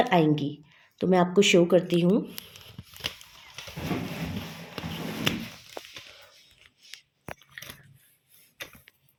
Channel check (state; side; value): identical; both; correlation 1.00